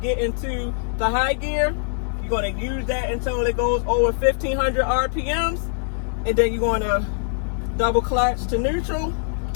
into the high gear. You're going to use that until it goes over 1500 RPMs, and then you're going to double clutch to neutral,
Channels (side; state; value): right; silent; digital silence